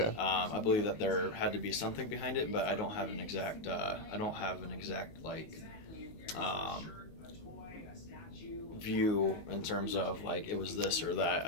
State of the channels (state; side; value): late; right; 19 ms